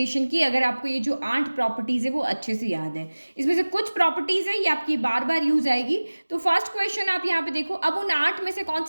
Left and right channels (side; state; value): both; inverted; correlation -1.00